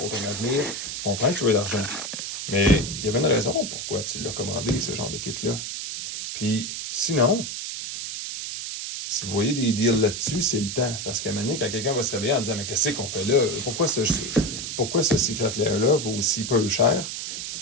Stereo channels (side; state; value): right; noise; hiss, 6 dB below the sound